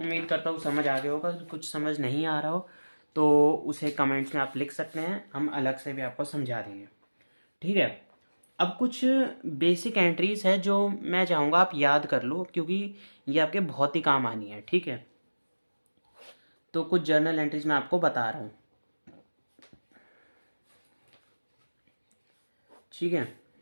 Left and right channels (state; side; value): inverted; both; correlation -1.00